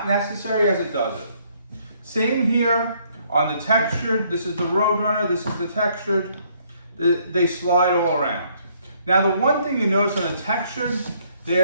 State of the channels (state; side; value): inverted; both; correlation -0.67